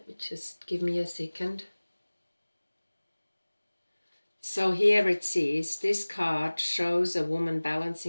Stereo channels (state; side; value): inverted; both; correlation -1.00